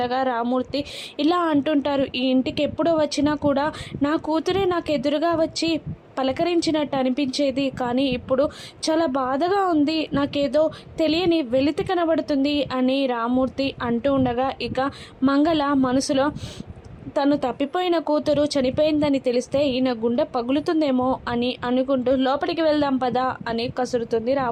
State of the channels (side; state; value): both; identical; correlation 1.00